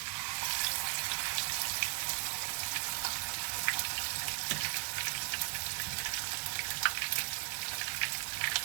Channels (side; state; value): left; quieter; 25.9 dB